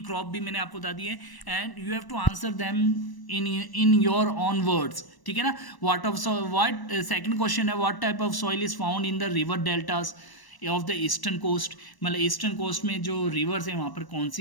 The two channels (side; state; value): right; late; 1.0 ms